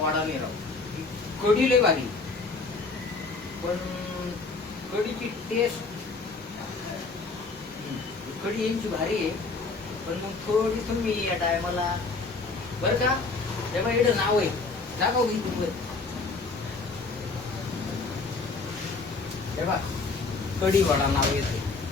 नाही राव. कढी लय भारी, पण कढीची टेस्ट, कढी यांची भारी आहे, पण मग थोडी तुम्ही या टायमाला बरं का, तेव्हा एवढं नाव आहे दाखव मी तुम्ही तेव्हा कढी वडा नाव येते.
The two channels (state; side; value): quieter; right; 4.0 dB